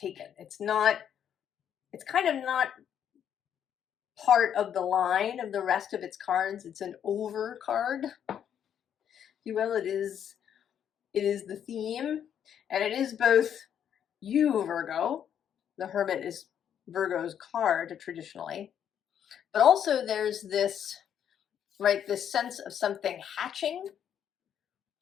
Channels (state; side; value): quieter; right; 9.1 dB